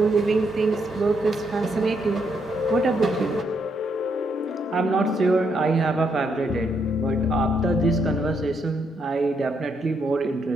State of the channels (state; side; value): normal; both; correlation 0.76